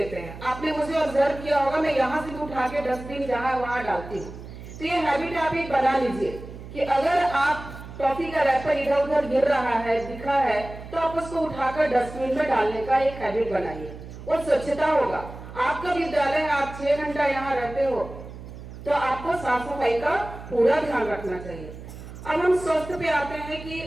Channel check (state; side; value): noise; right; hum, 13 dB below the sound